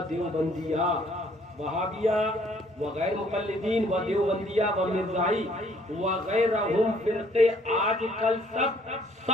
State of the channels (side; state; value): both; normal; correlation 0.62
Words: دیوبندیہ، وہابیہ و غیر مقلدین و دیوبندیہ و مرزائی وغیرہم فرقے آج کل